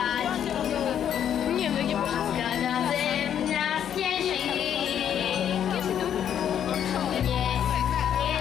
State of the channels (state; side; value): quieter; right; 9.4 dB